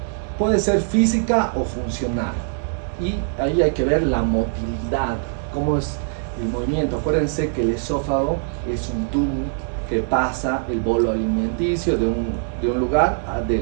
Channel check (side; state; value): left; silent; 64 dB below the other